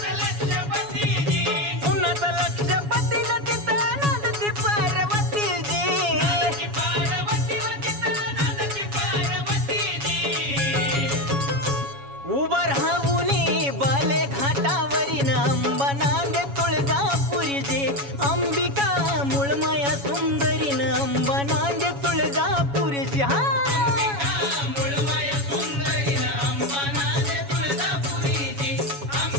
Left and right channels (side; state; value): left; late; 7.1 ms